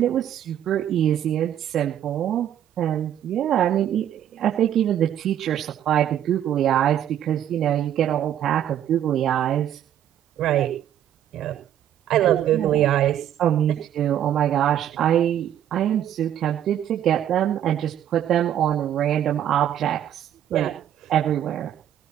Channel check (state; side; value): quieter; left; 10.7 dB